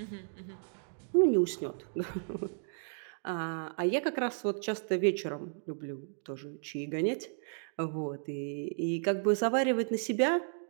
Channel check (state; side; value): silent; left; digital silence